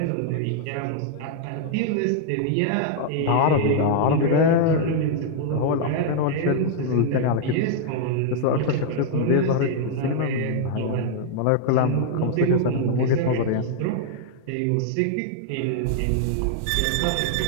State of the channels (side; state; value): both; different; correlation -0.01